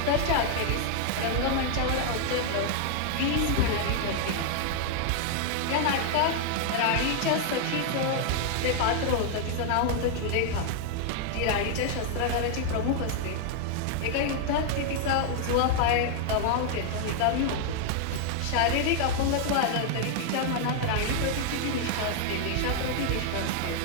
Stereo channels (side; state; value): both; different; correlation 0.00